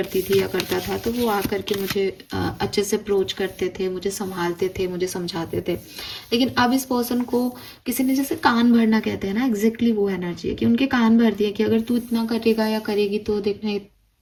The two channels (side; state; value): both; identical; correlation 1.00